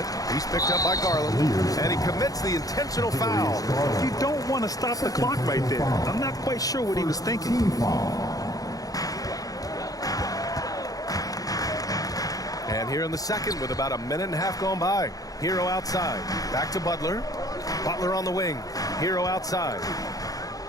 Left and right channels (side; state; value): right; late; 0.17 ms